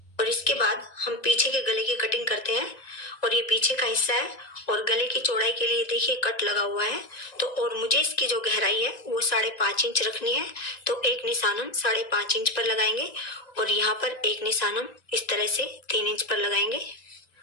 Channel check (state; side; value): late; right; 1.9 ms